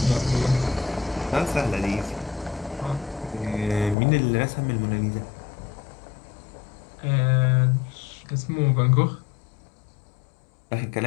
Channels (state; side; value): drops out; right; at 4.0 s